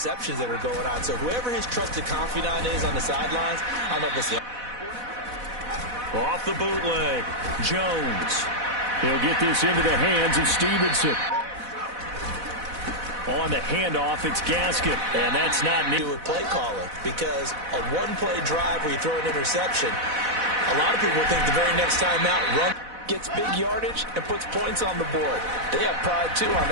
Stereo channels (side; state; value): left; late; 4.0 ms